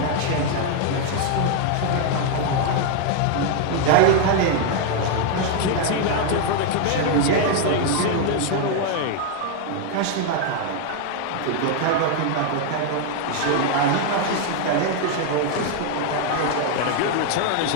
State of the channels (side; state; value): both; different; correlation 0.01